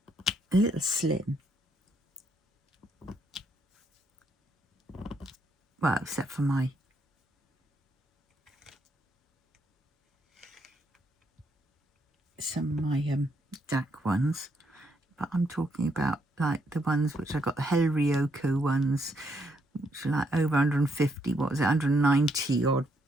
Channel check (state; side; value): normal; both; correlation 0.74